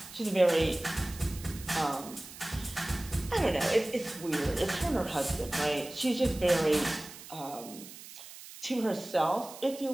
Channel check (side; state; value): right; noise; hiss, 15 dB below the sound